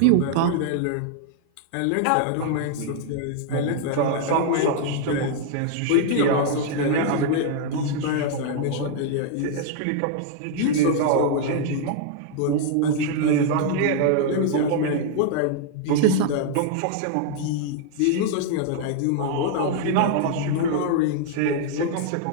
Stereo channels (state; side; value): different; both; correlation 0.00